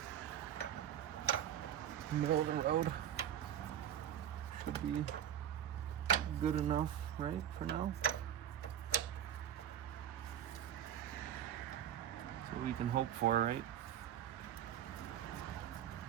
Middle of the road. Should be good enough, right, for now? That's what we can hope for, right?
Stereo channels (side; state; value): left; quieter; 10.2 dB